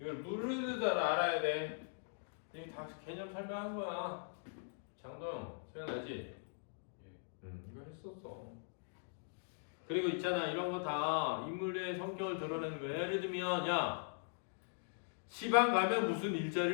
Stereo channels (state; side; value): silent; right; digital silence